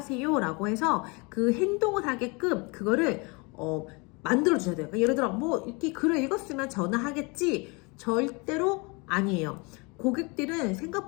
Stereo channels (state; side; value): quieter; right; 29.1 dB